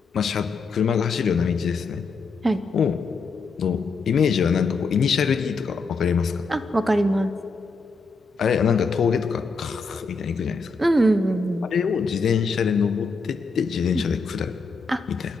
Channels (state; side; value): quieter; right; 4.1 dB